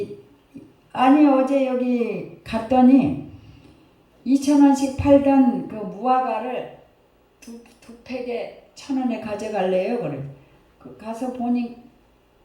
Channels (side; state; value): both; identical; correlation 1.00